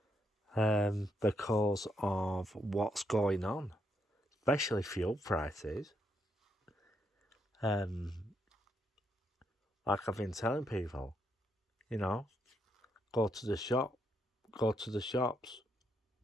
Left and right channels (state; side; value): normal; both; correlation 0.78